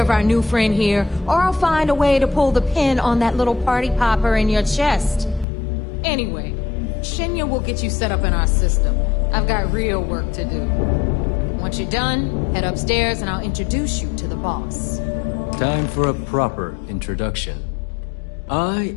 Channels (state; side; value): drops out; right; at 5.5 s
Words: our new friend here, or I'll find a way to pull the pin on that little party popper in your chest. Anyway, Shinya will get you set up in our system. I've got real work to do. Once you're done, head upstairs and I'll introduce you to the boss. Time for a proper introduction. I